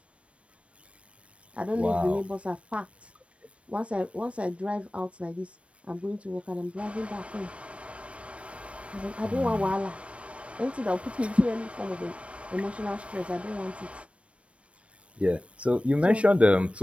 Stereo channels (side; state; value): left; late; 0.062 ms